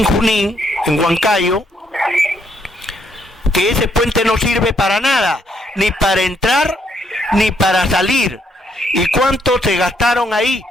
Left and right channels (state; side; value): normal; both; correlation 0.73